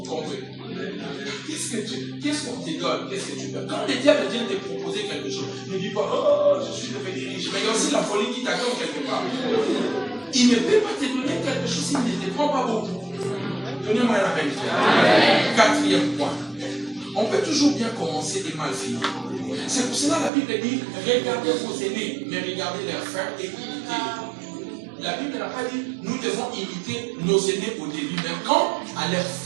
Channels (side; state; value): left; drops out; at 20.3 s